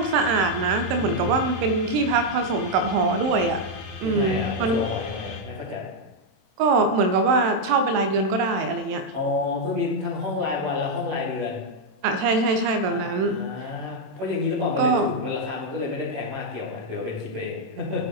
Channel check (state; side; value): late; left; 27 ms